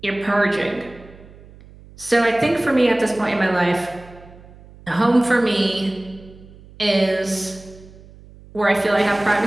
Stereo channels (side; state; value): right; noise; hum, 22 dB below the sound